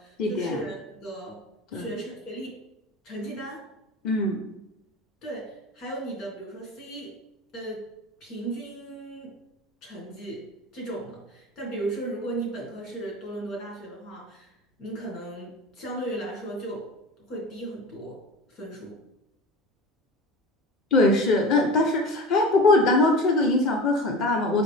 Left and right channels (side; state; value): both; normal; correlation 0.33